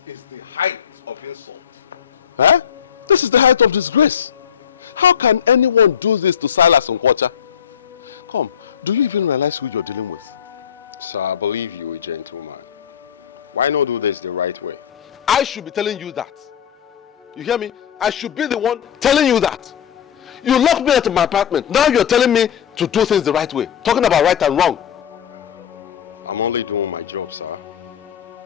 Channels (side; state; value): right; quieter; 8.5 dB